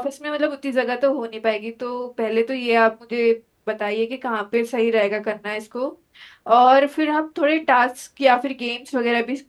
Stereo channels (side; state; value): both; identical; correlation 1.00